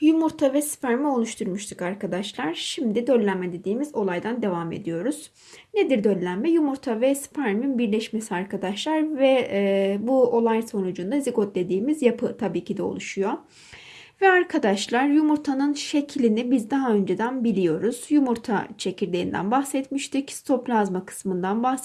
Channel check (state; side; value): identical; both; correlation 1.00